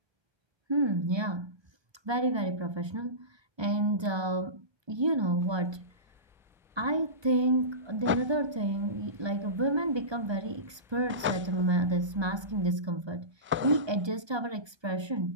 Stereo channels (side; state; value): left; late; 1.2 ms